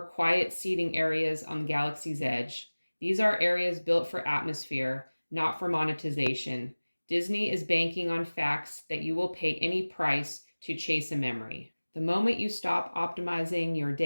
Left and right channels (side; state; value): both; inverted; correlation -1.00